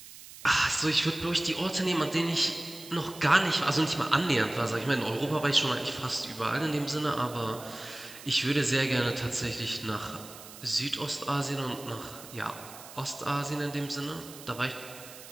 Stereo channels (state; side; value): noise; right; hiss, 16 dB below the sound